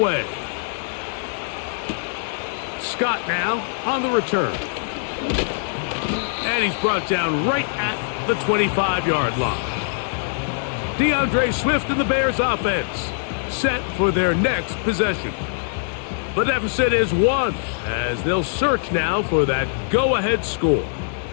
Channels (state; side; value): silent; right; digital silence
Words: Scott now on the return. And he's brought down right at the 25-yard line. DeAndre Swift and the Bears offense set for their next possession. The deficit is 1 as they'll search now for that go-ahead score.